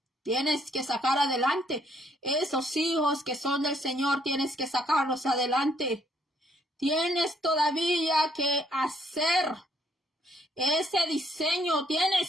tienes que sacar adelante esos hijos que son del Señor, tienes que sacarlos adelante. Tienes todavía que hacer ese diseño,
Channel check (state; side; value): normal; both; correlation 0.68